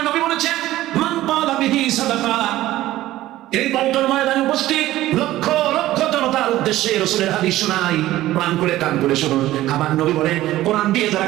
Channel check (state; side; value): quieter; left; 15.3 dB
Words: নবী বলেছেন, মান ক্বালা বিহি সাদাকা। এই বন্টন ময়দানে উপস্থিত লক্ষ লক্ষ জনতার উদ্দেশ্যে রাসূলের হাদিস শোনাই, প্রাণ করে কান করে শুনুন। আমার নবী বলেন, কোরআন দিয়ে যারা